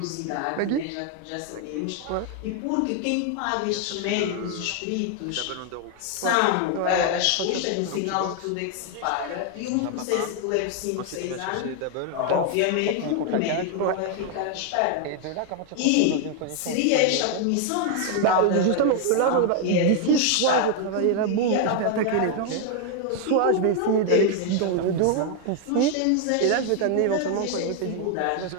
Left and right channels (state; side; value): different; both; correlation 0.00